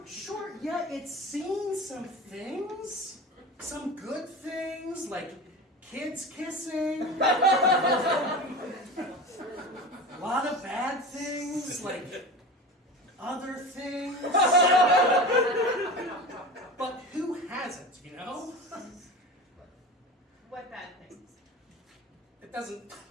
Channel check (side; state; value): both; normal; correlation 0.31